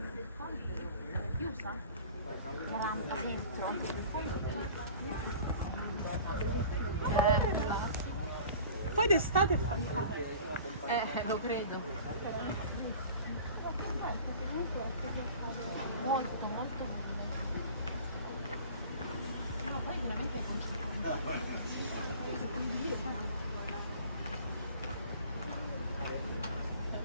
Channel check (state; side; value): inverted; both; correlation -0.43